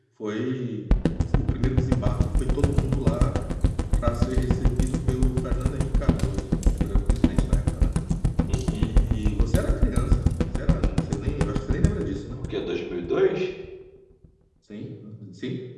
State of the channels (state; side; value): identical; both; correlation 1.00